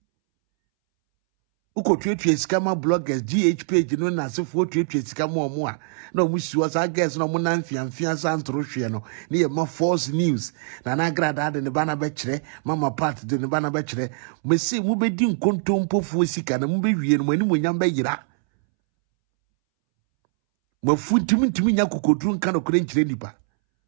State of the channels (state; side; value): silent; left; 63 dB below the other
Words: uko twetwe skama bloggers GH page no na sefo twetwe skama omo a na omu siwa sa guys no mo na mfiamfia sa ntoro hwe no ne ye ma false news na Agradaa de ne bana be kire mama part de ne bana be kire mesi mu be di nkontompofu sika na mu be wie no mani monyam be yira mafuntimintimi nya kokodru nka no kore nkire nipa